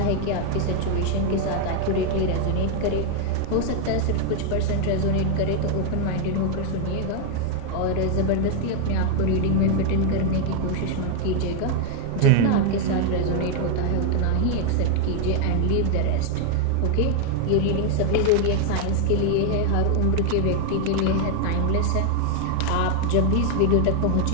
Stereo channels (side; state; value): both; different; correlation 0.00